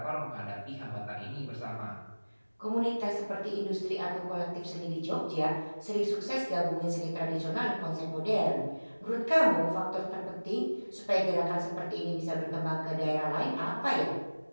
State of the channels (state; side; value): inverted; both; correlation -1.00